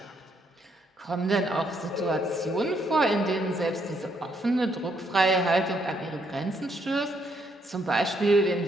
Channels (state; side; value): normal; both; correlation 0.73